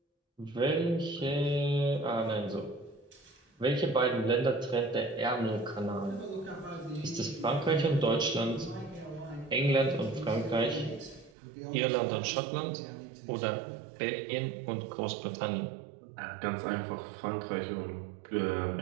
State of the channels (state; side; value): drops out; left; at 11.4 s